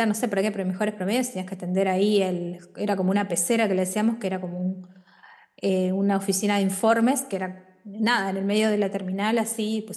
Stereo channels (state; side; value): identical; both; correlation 1.00